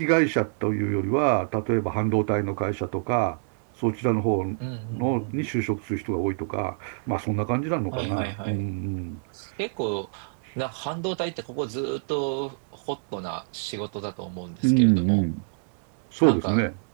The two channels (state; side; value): silent; left; 61 dB below the other